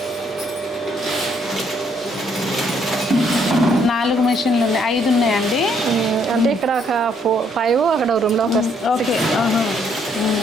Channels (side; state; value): both; normal; correlation 0.69